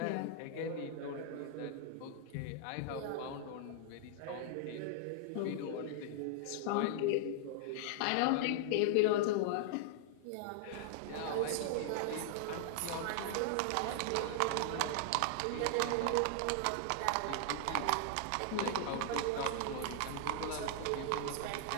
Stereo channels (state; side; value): different; both; correlation 0.00